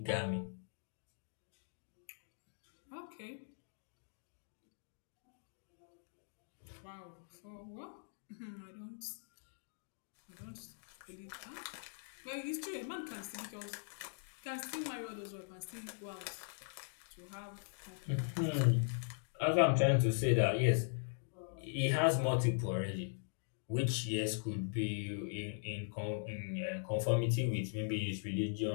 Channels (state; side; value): silent; right; digital silence